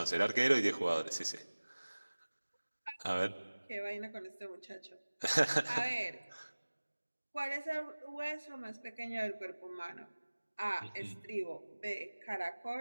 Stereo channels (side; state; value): both; inverted; correlation -1.00